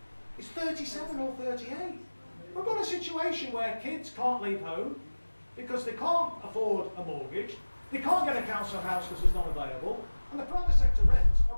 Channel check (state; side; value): inverted; both; correlation -1.00